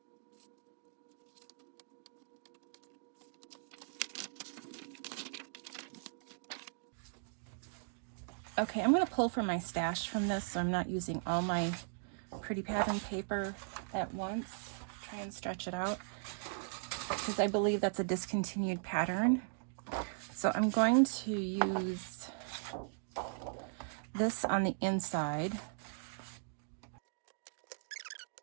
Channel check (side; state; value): left; silent; digital silence